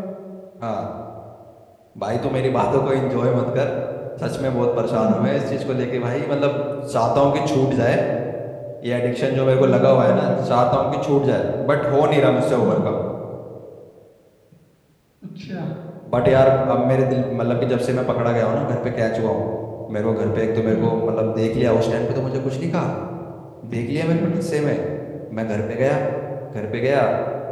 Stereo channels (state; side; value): identical; both; correlation 1.00